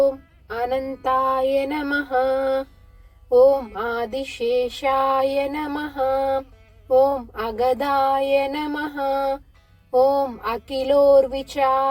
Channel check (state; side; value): identical; both; correlation 1.00